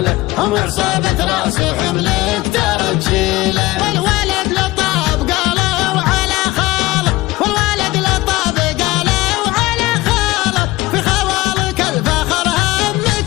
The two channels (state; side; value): quieter; right; 19.1 dB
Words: هم عصابة راس حملك ترجيله. والولد لطاب قالوا على خاله، والولد لطاب قالوا على خاله، في خوالك الفخر